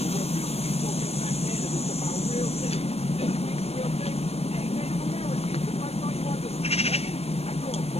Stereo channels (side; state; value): right; late; 0.30 ms